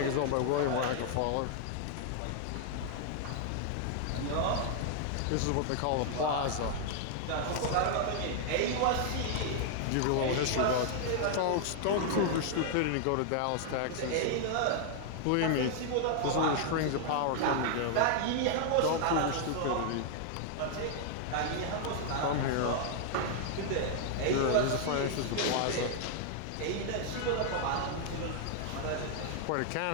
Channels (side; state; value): both; different; correlation 0.00